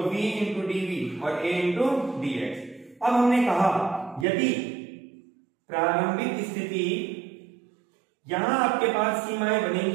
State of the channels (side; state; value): left; drops out; at 4.2 s